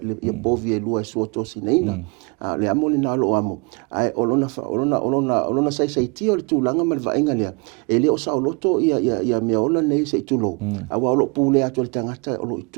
bovi e lua so to sinina le amo le na lo amo ai olona sai ti o le tulanga mal va inga le ele o sa loto ia me ola nei sei tulo awa o lo pule atu le tangata o lo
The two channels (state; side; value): quieter; left; 31.2 dB